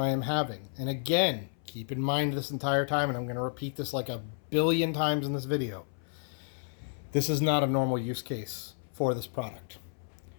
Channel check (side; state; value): right; silent; 57 dB below the other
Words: am having. And again, keep in mind this entire time, and I'm going to repeat this like 1 billion times in this video, this is not a normal use case for this product.